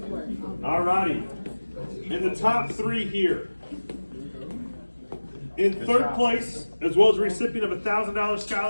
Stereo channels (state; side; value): inverted; both; correlation -1.00